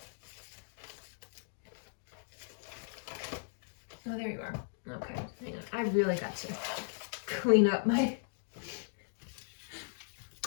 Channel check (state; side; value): silent; right; digital silence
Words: Oh, there you are. Okay, hang on. I really got to clean up my...